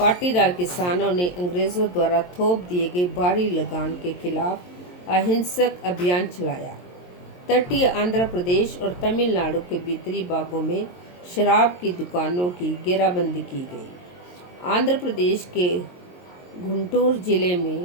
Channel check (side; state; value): right; late; 22 ms